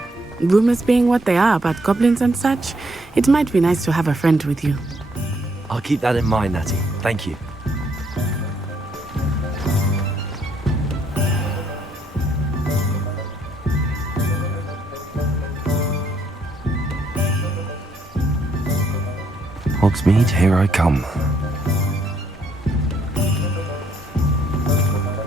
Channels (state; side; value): normal; both; correlation 0.71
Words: Rumors being what they are about goblins and such, it might be nice to have a friend with you. I'll keep that in mind, Natty. Thank you. Hogsmeade, here I come.